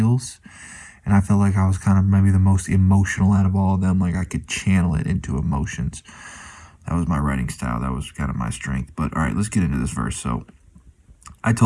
and I felt like I was kind of maybe the most emotional out of all of them. Like, I could channel it into emotions. That was my writing style. That was kind of my strength. But, all right, let's get into this verse. So, I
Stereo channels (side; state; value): both; identical; correlation 1.00